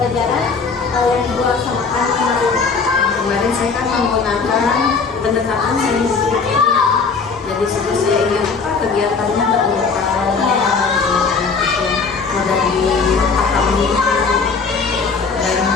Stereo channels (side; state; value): right; quieter; 4.9 dB